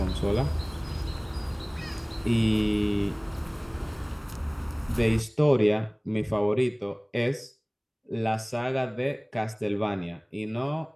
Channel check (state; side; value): identical; both; correlation 1.00